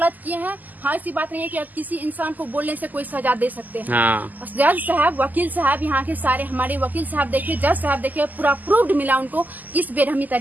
किए हैं, हाँ, ऐसी बात नहीं है कि आप किसी इंसान को बोलने से कोई सजा दे सकते हैं। हाँ। जज साहब, वकील साहब, यहाँ के सारे हमारे वकील साहब देखिए, जज साहब देखिए, पूरा प्रूव्ड मिला उनको किस बेरहमी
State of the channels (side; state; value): left; late; 0.083 ms